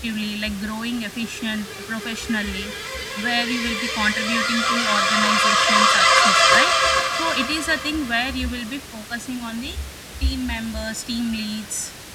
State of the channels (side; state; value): both; identical; correlation 1.00